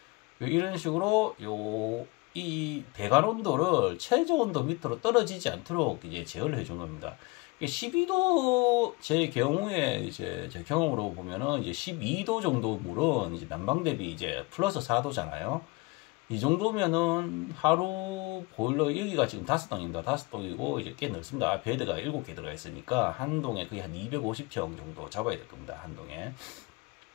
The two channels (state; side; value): quieter; right; 25.3 dB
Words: 이런 식으로 이 배관 온도를 최저 온도 밑으로 떨어지지 않도록 이제 제어를 해준 겁니다. 12도 제 경우에 이제 제 경험으로 보면은 이제 12도 정도 물은 이제 난방 대비 이제 플러스 4도잖아요. 이 정도면은 하루 보일러 여기가 지금 5동입니다. 5동이고 이제 꽤 넓습니다. 베드가 7개 들어가 있으니까 한 동에 거의 한 250평 정도 잡아야 될 겁니다. 한 동에.